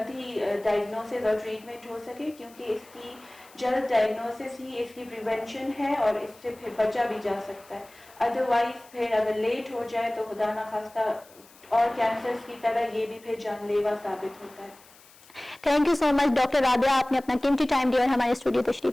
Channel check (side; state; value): left; noise; hiss, 25 dB below the sound